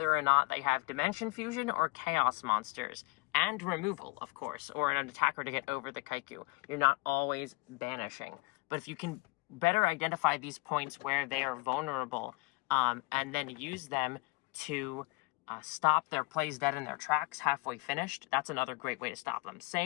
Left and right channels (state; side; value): quieter; right; 24.9 dB